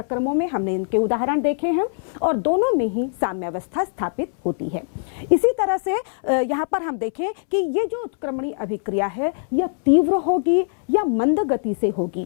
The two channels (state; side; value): silent; right; 64 dB below the other